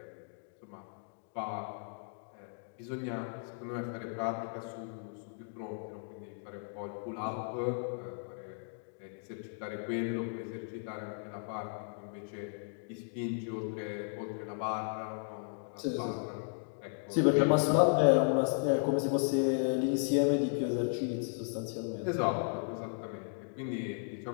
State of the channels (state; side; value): silent; right; digital silence